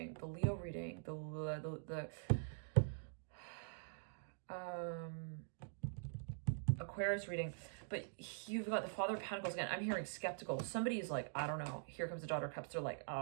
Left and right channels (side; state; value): left; silent; digital silence